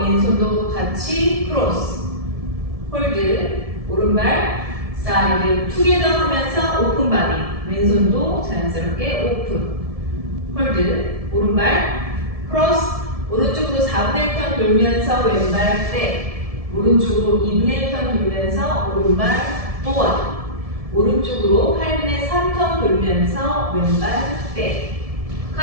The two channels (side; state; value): left; late; 1.7 ms